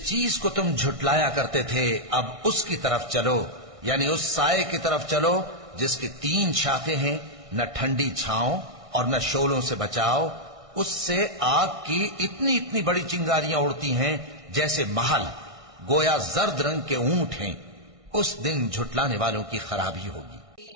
چیز کو تم جھٹلایا کرتے تھے اب اس کی طرف چلو، یعنی اس سائے کی طرف چلو جس کی 3 شاخیں ہیں، نہ ٹھنڈی چھاؤں اور نہ شعلوں سے بچاؤ۔ اس سے آگ کی اتنی اتنی بڑی چنگاریاں اڑتی ہیں جیسے محل، گویا زرد رنگ کے اونٹ ہیں۔ اس دن جھٹلانے والوں کی خرابی ہوگی۔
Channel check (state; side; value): late; left; 1.6 ms